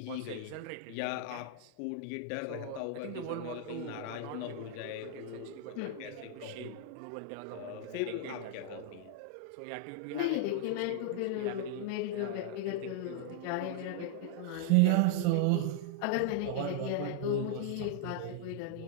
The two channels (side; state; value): both; different; correlation 0.00